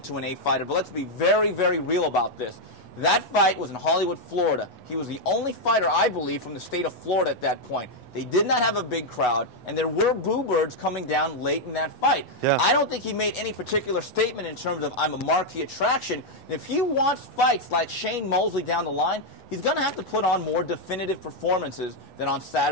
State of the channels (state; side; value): late; right; 8.1 ms